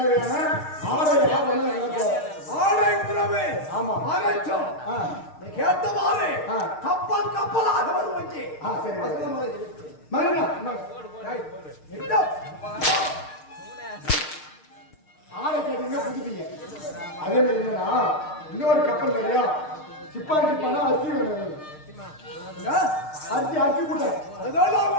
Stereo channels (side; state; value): right; late; 6.5 ms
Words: ஆடை ஆபரணம் எனக்கு ஆடை உணவு ஆமா அனைத்தும் கேட்டவாறு ஆ. கப்பல் கப்பலாக வருவங்கே சரி மகனா ஆளை கேட்டீங்கன்னா புதுப்பீங்க அதே மாதிரி என்னன்னா இன்னொரு கப்பல் நிறையா சிப்பானா அரிசி வேணும் அரிசி கூட்ட அதெல்லாம்